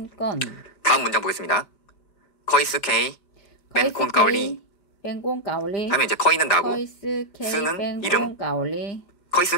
다음 문장 보겠습니다. 커이스케이 벤콘 까올리 하면 이제 커이는 나고 스는 이름.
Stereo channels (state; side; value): late; right; 5.1 ms